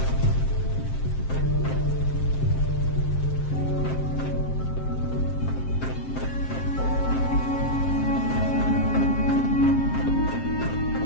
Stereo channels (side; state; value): right; late; 7.6 ms